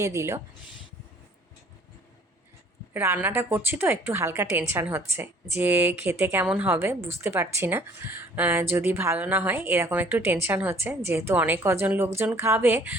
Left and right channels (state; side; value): normal; both; correlation 0.55